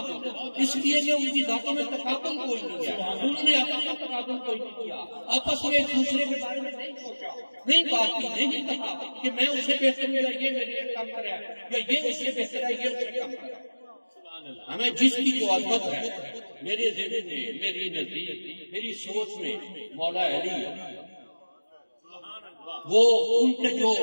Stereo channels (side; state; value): both; inverted; correlation -1.00